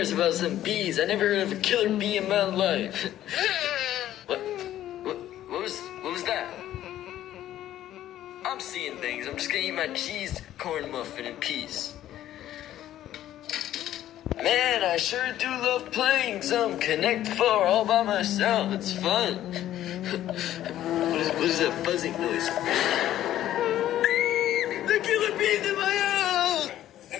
us about some bees. I never heard of a killer bee in my life. What was that? I'm seeing things. I'm just gonna eat my cheese corn muffin in peace. Man, I sure do love playing some Connect 4 all by myself. It's fun. What is that buzzing noise? The killer bees in my house!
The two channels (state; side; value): quieter; right; 12.6 dB